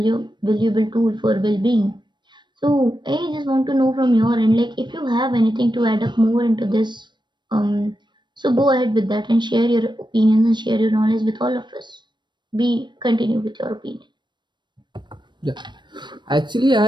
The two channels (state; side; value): late; left; 0.22 ms